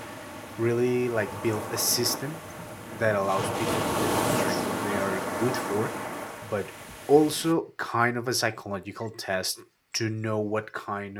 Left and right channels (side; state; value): both; identical; correlation 1.00